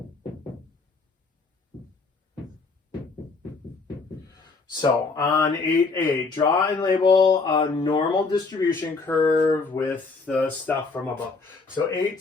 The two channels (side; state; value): right; quieter; 4.1 dB